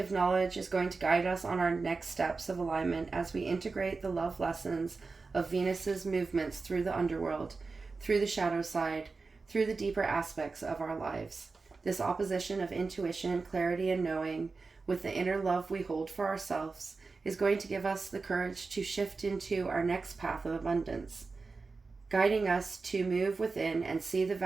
knowledge is going to guide us on our next steps of alignment as we integrate the love lessons of Venus's movements through the underworld, through the shadow side, through the deeper aspects of our lives. This opposition of intuition, clarity, and knowing with the inner love we hold for ourselves is going to give us the courage to shift into our next path of abundance, guiding us to move within and see the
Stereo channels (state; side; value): quieter; left; 4.2 dB